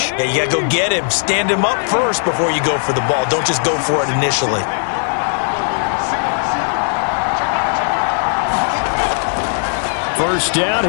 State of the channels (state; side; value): silent; right; digital silence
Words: Yeah, you got to go get him. Stand him up first before you go for the ball. Don't just go for it initially. First down,